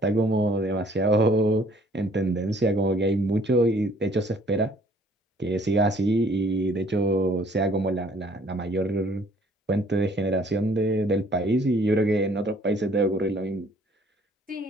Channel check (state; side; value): normal; both; correlation 0.59